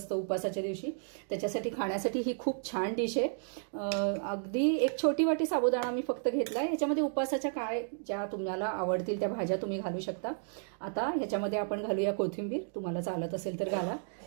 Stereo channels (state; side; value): silent; left; digital silence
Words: उपासाच्या दिवशी त्याच्यासाठी खाण्यासाठी ही खूप छान डिश आहे। अगदी एक छोटी वाटी साबुदाणा मी फक्त घेतलाय। ह्याच्यामध्ये उपासाच्या काय ज्या तुम्हाला आवडतील त्या भाज्या तुम्ही घालू शकता। आता ह्याच्यामध्ये आपण घालूया कोथिंबीर, तुम्हाला चालत असेल तर घाला।